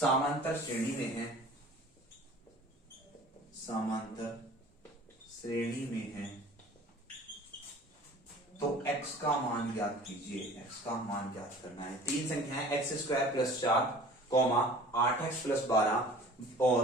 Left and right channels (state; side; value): normal; both; correlation 0.45